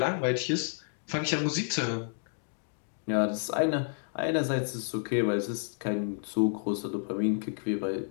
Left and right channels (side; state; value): right; silent; digital silence